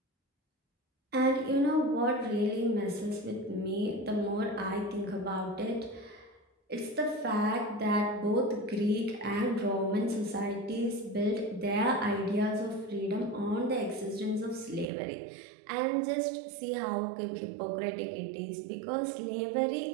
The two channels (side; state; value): left; drops out; at 14.9 s